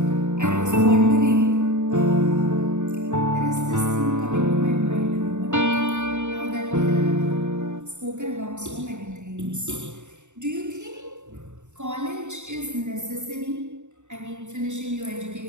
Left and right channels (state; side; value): late; left; 0.84 ms